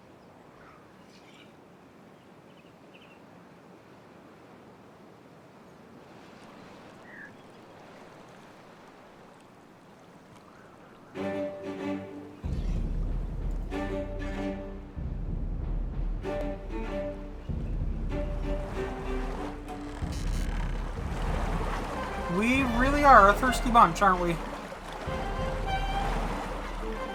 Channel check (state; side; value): identical; both; correlation 1.00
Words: We really are a thirsty bunch, aren't we?